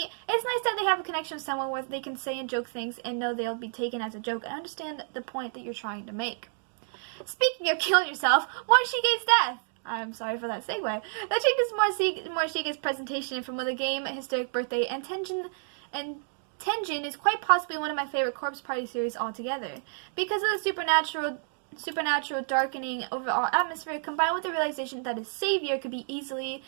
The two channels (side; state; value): left; silent; digital silence